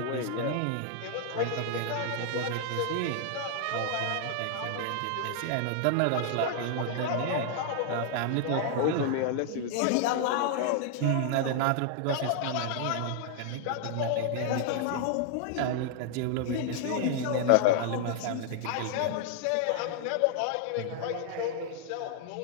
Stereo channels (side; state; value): both; different; correlation 0.00